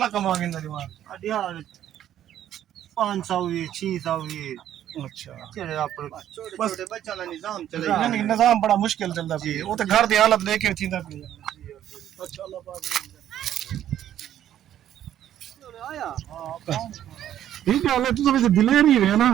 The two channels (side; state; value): left; quieter; 11.3 dB